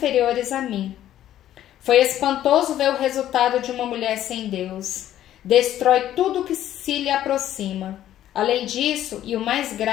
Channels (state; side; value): quieter; right; 12.2 dB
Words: a mim. Foi espantoso ver o resultado de uma mulher sem Deus. Destrói tudo que se lhe aproxima. Além disso, e o mais